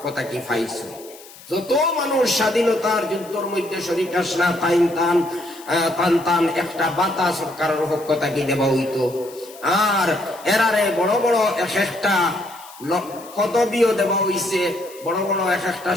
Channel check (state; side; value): noise; left; hiss, 20 dB below the sound